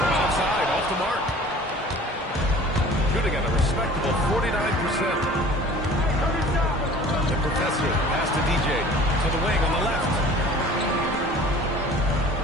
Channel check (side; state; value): both; normal; correlation 0.46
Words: outside, off the mark. Shooting at a respectable 49%. The professor, pass to DJ. To the wing on the left.